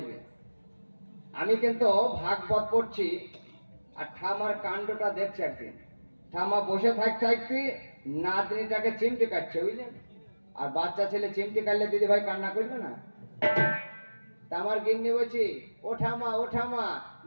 আমি কিন্তু ভাগবত পড়ছি, আর ঠাম্মার কাণ্ডটা দেখছে। একদিন ঠাম্মা বসে থাকতে থাকতে নাতনিটাকে চিমটে কাটছে, বুঝলেন? আর বাচ্চা ছেলে চিমটে কাটলে দিদি ভাই কান্না করবে না? তা আমার গিন্নি বলছি, ও ঠাম্মা, ও ঠাম্মা,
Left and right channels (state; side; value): inverted; both; correlation -1.00